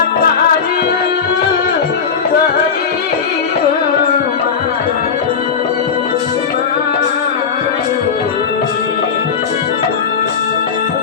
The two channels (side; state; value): right; quieter; 6.3 dB